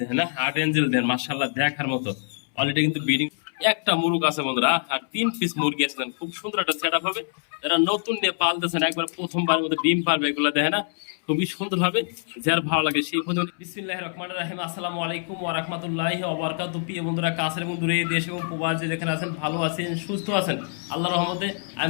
দেয় না, হার্ট এঞ্জেল দেন মাশাআল্লাহ দেখার মতো। অলরেডি কিন্তু বিডিং একটা মুরগ আছে বন্ধুরা, আর 3 পিস মুরগি আছে। খুব সুন্দর একটা সেট আপ হবে। যারা নতুন নিয়ে পালতেছেন একবার প্রথমবার মতো ডিম পারবে এগুলো দেখে না, খুবই সুন্দর হবে। যার ভালো লাগে সেই ফোন। বিসমিল্লাহির রহমানির রহিম। আসসালামু আলাইকুম ওয়া রাহমাতুল্লাহি ওয়া বারাকাতুহু। প্রিয় বন্ধুরা কাছের এবং দূরে দেশ এবং প্রবাসী যেখানে আছেন ভালো আছেন সুস্থ আছেন আল্লাহর রহমতে।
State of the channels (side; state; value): right; silent; 62 dB below the other